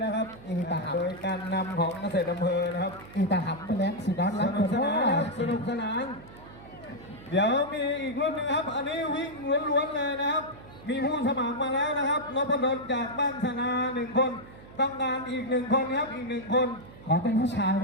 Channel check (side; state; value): right; noise; hum, 19 dB below the sound